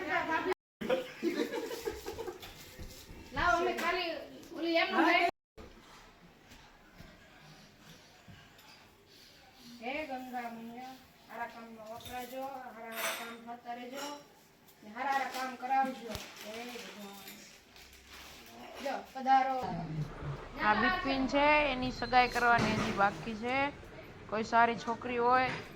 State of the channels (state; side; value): identical; both; correlation 1.00